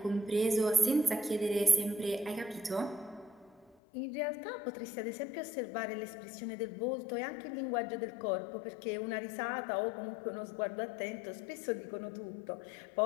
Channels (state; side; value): drops out; right; at 3.8 s